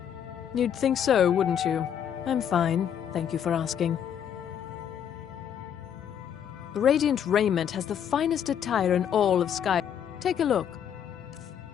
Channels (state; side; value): quieter; right; 8.9 dB